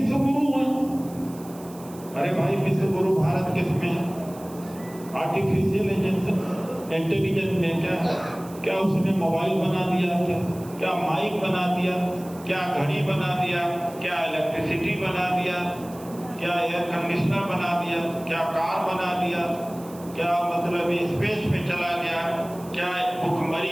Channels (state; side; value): noise; right; hiss, 21 dB below the sound